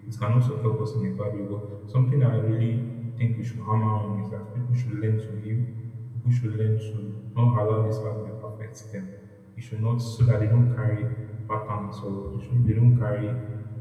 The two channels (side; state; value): both; identical; correlation 1.00